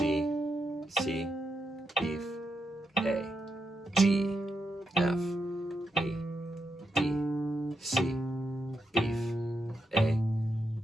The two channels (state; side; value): normal; both; correlation 0.83